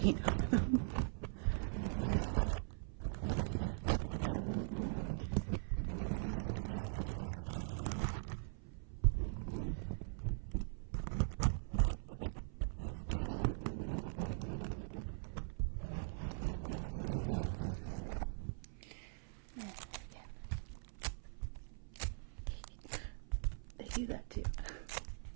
on them. Do that too.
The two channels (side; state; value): left; silent; 50 dB below the other